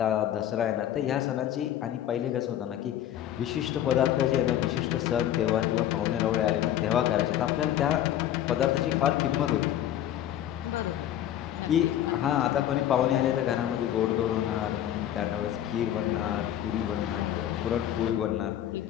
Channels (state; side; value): quieter; right; 11.4 dB